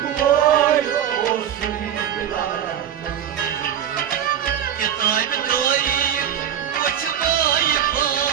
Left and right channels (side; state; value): left; quieter; 9.8 dB